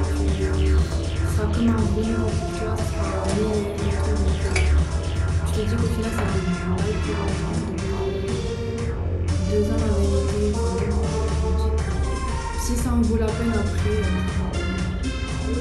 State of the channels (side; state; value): both; identical; correlation 1.00